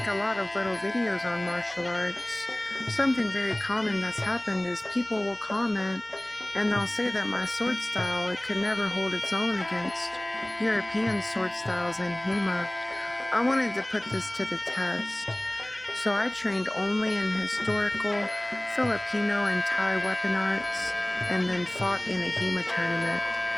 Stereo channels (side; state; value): right; noise; hum, 27 dB below the sound